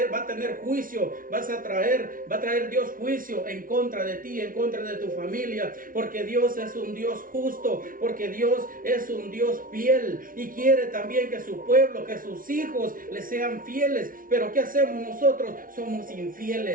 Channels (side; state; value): left; late; 0.40 ms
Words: va a tener juicio, va a traer Dios juicio en contra de ti, en contra de tu familia, porque Dios es un Dios justo, porque Dios es un Dios fiel y quiere también que su pueblo, que sus hijos le sean fieles. Pero ¿qué hacemos nosotros? Somos